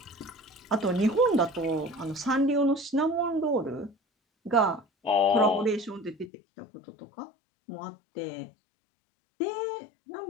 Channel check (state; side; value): drops out; right; at 6.3 s